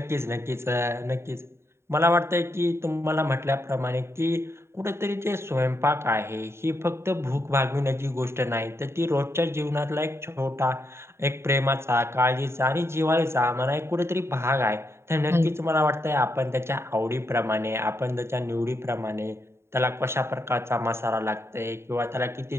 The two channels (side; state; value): left; late; 0.12 ms